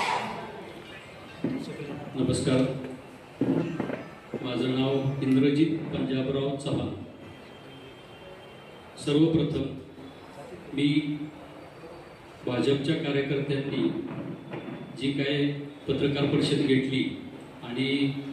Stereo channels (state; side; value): identical; both; correlation 1.00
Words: नमस्कार, माझं नाव इंद्रजीत पंजाबराव चव्हाण। सर्वप्रथम मी भाजपच्या कार्यकर्त्यांनी जी काय पत्रकार परिषद घेतली आणि